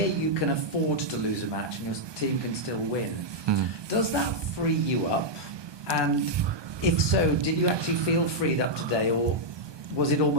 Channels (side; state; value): left; late; 1.2 ms